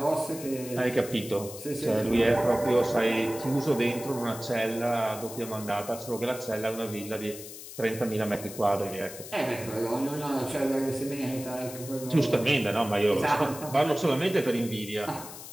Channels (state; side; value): noise; left; hiss, 13 dB below the sound